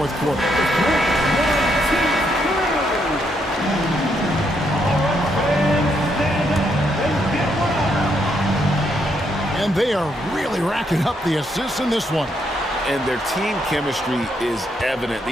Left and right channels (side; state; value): both; normal; correlation 0.76